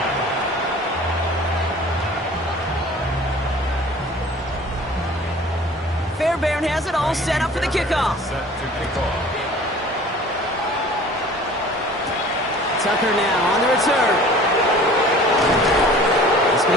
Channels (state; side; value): normal; both; correlation 0.46